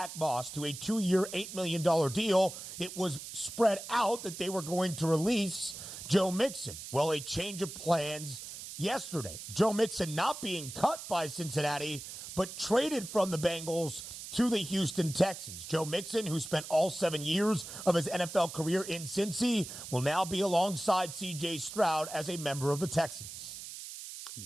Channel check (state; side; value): noise; right; hiss, 10 dB below the sound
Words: Moss to a 2-year, $8 million deal, it was spread out that they were going to release Joe Mixon. Well, a change of plans yesterday. Joe Mixon not being cut by Cincinnati, but traded from the Bengals to the Houston Texans. Joe Mixon, who spent all 7 years of his NFL career in Cincy, will now be alongside C.J. Stroud as a member of the Texans.